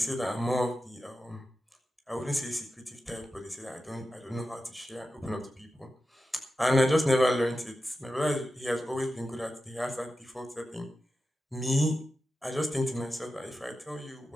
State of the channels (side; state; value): both; normal; correlation 0.92